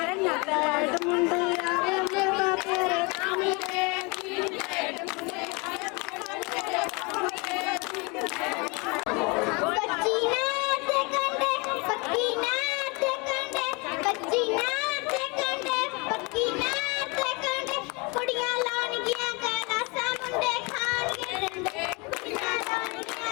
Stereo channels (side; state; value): right; quieter; 29.0 dB